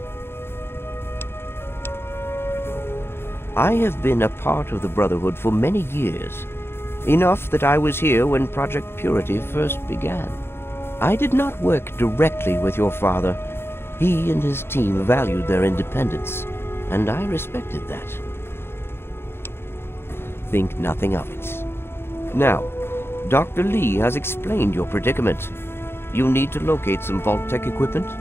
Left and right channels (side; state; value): right; late; 0.11 ms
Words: I have been a part of the Brotherhood for many years, enough that I was here when Project Purity first began. I did not work directly with your father. He and his team valued their independence, and I respected that. Think nothing of it. Now, Dr. Lee has explained your predicament. You need to locate some Vault-Tec equipment?